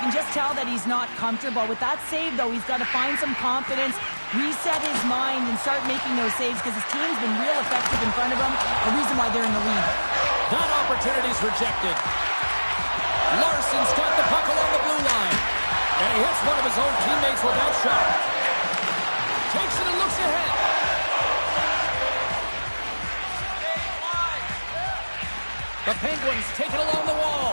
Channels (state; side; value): inverted; both; correlation -1.00